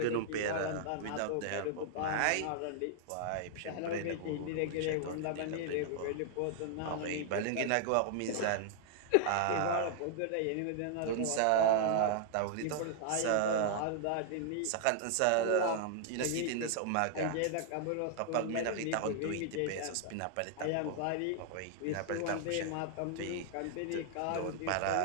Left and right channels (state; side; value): different; both; correlation -0.01